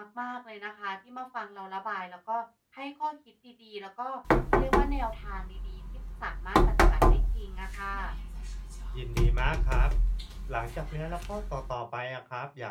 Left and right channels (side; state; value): both; identical; correlation 1.00